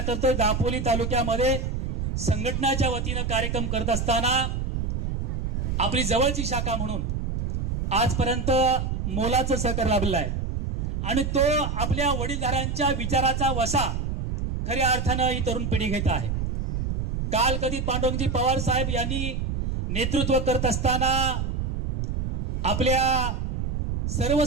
करतोय. दापोली तालुक्यामध्ये संघटनाच्या वतीनं कार्यक्रम करत असताना आपली जवळची शाखा म्हणून आजपर्यंत मोलाचं सहकार्य लाभलेलं आहे आणि तो आपल्या वडीलधाऱ्यांच्या विचाराचा वसा खऱ्या अर्थानं ही तरुण पिढी घेत आहे. काल कधी पांडुरंगजी पवार साहेब यांनी नेतृत्व करत असताना आपल्या सर्व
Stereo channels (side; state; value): right; noise; rumble, 1 dB below the sound